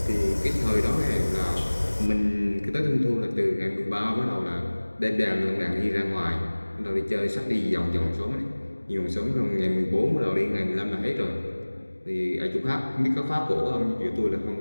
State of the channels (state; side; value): inverted; both; correlation -1.00